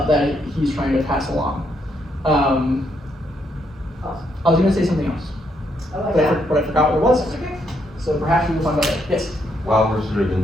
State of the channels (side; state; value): both; normal; correlation 0.75